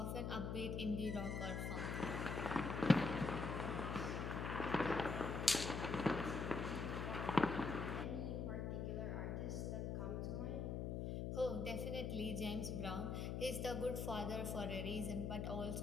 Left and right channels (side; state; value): left; noise; hum, 1 dB below the sound